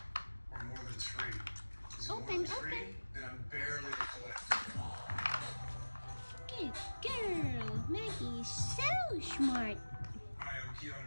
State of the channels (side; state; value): both; inverted; correlation -1.00